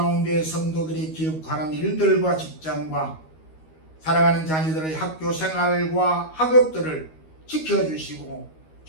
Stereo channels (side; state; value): right; late; 13 ms